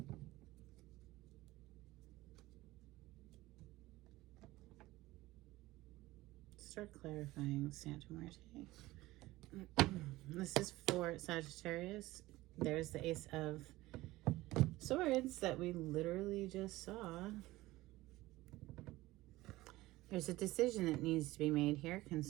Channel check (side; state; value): left; quieter; 18.3 dB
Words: Start clarifying, Santa Muerte. This is for Sagittarius. There's the Ace of Swords that we literally just saw. There's a decision that needs to be made here